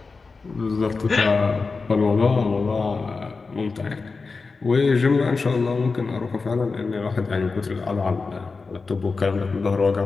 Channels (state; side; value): quieter; right; 4.3 dB